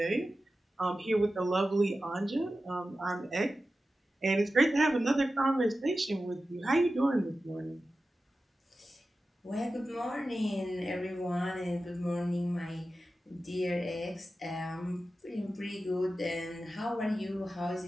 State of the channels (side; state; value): both; normal; correlation 0.93